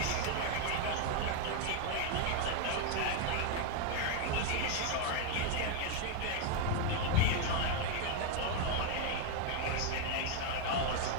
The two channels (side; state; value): both; different; correlation 0.01